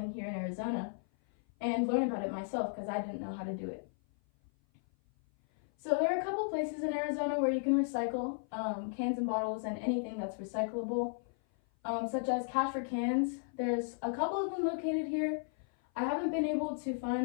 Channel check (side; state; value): right; silent; 55 dB below the other